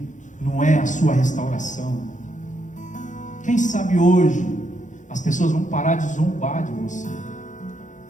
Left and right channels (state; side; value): late; right; 0.36 ms